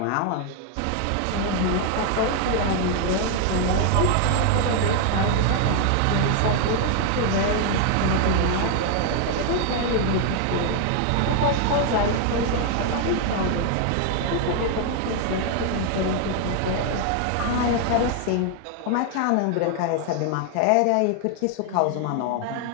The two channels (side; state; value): both; different; correlation 0.01